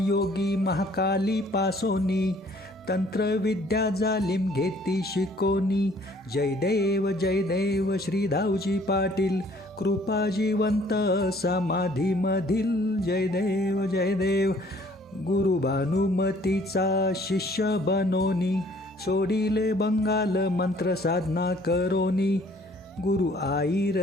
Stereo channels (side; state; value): both; normal; correlation 0.58